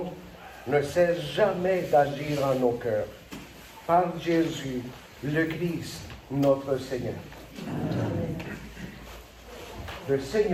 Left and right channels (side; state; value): both; identical; correlation 1.00